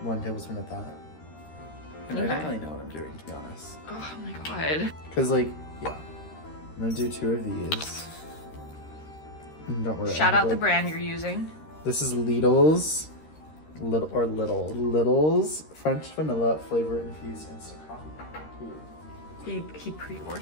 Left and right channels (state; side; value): late; right; 13 ms